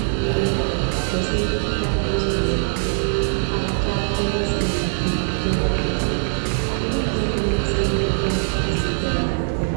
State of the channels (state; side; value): silent; left; digital silence